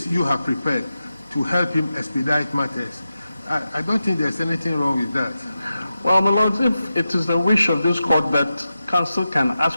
you have prepared to help him expedite matters, I don't think there's anything wrong with that. Well, my lords, if it is the wish of this court that counsel can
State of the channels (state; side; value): inverted; both; correlation -0.92